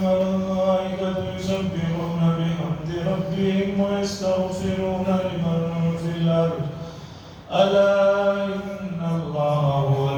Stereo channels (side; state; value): both; identical; correlation 1.00